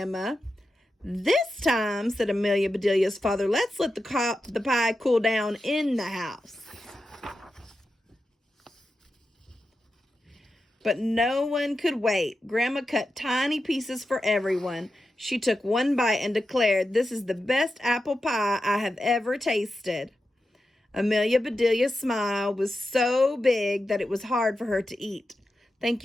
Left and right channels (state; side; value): normal; both; correlation 0.90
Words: "This time," said Amelia Bedelia's father, "let's let the pie cool down in the house." But no one could wait. Grandma cut tiny pieces for everyone. She took one bite and declared, "This is the best apple pie I have ever tasted." Amelia Bedelia's smile was so big that it was hard for her to eat. "Thank